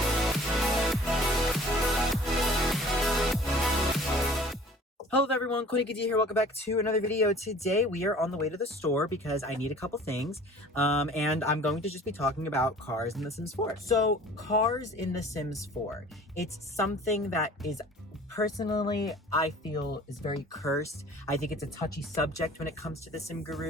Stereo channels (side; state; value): both; normal; correlation 0.48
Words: Hello everyone, Coolnickyd here. Welcome back to another video. Today we are on the way to the store because I need a couple things, and I'm going to just be talking about cars in The Sims 4. So, cars in The Sims 4, it's something that is personally, I feel is very cursed. I think it's a touchy subject when it comes to the Sim